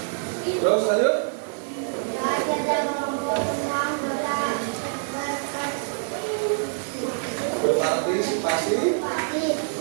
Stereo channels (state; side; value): silent; left; digital silence